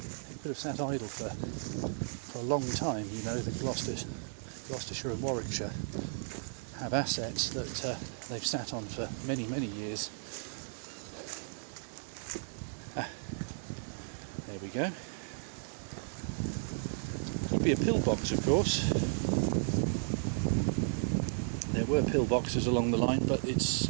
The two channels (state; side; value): silent; left; digital silence